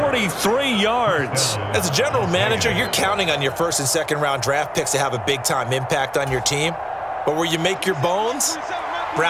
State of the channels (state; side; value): identical; both; correlation 1.00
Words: yards. As a general manager, you're counting on your first and second round draft picks to have a big-time impact on your team. But where you make your bones,